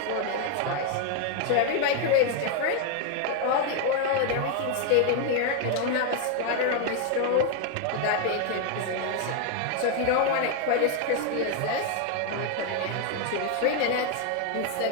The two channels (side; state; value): both; different; correlation 0.01